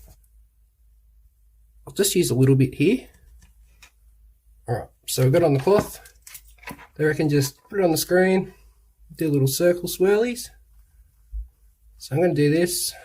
I'll just use a little bit here. Alright, so we've got it on the cloth. They reckon just put it on the screen, do little circle swirlies. So I'm going to do this,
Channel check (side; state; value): both; identical; correlation 1.00